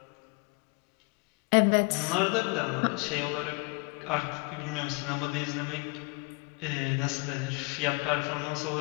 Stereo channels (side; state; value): right; quieter; 29.5 dB